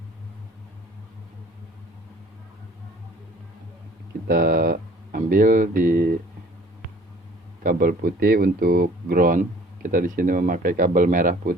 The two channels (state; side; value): normal; both; correlation 0.52